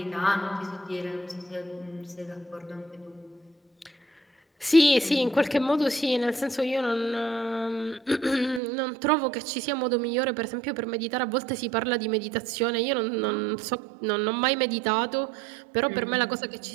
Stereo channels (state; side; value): drops out; left; at 8.6 s